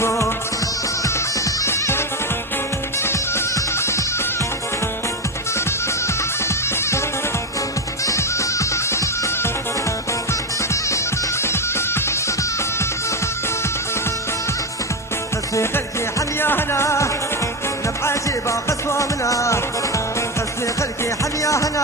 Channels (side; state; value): both; normal; correlation 0.12